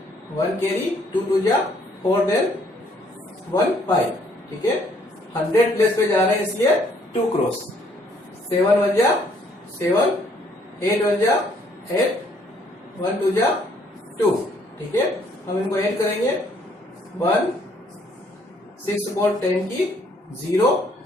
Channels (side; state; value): both; normal; correlation 0.65